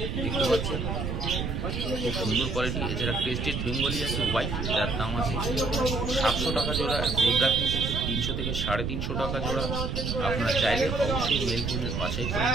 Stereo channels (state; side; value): noise; right; rumble, 2 dB below the sound